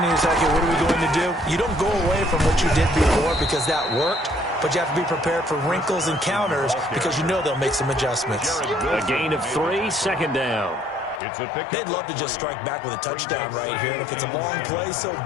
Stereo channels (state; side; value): drops out; right; at 11.2 s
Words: to yourself, okay, what are we going to do? You don't go away from what you did before because that worked. But you have to be prepared for wrinkles and counters because you know they'll make some adjustments. A gain of 3, 2nd down. They'd love to just strike back with a touchdown right here. And if it's a long play, so